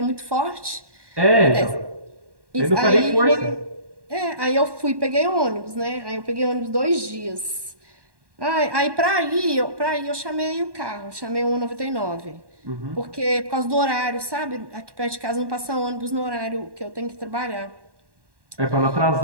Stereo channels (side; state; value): left; late; 1.1 ms